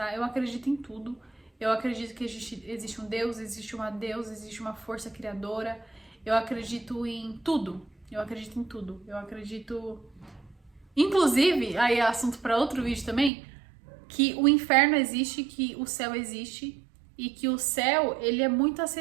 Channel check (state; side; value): drops out; left; at 13.3 s